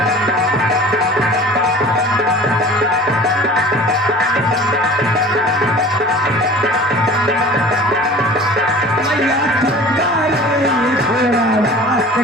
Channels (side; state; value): both; normal; correlation 0.42